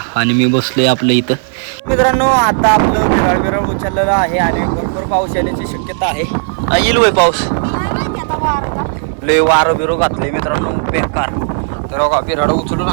आणि मी बसलोय आपलं इथं मित्रांनो. आता आपलं बिराड उचललेलं आहे आणि भरपूर पाऊस येण्याची शक्यता आहे. येईल वय पाऊस लय वारं बिरो घातलंय मित्रांनो बेकार. तर बघा बिराड उचलून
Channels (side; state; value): left; silent; digital silence